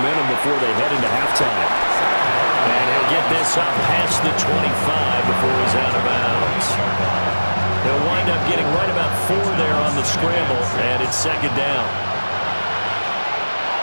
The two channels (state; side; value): inverted; both; correlation -1.00